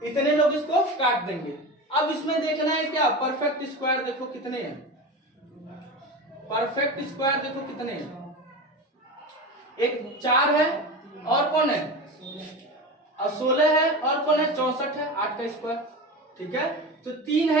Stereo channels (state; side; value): normal; both; correlation 0.26